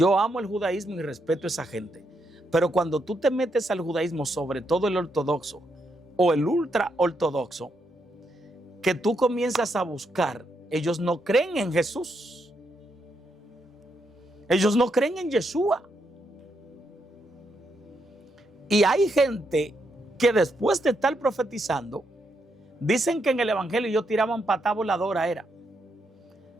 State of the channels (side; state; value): both; normal; correlation 0.80